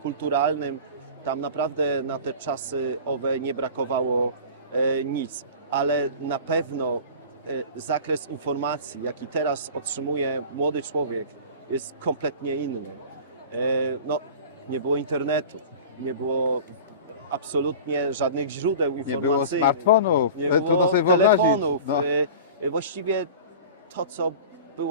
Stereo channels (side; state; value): both; inverted; correlation -0.37